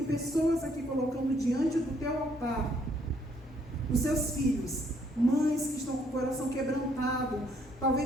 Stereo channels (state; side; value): normal; both; correlation 0.68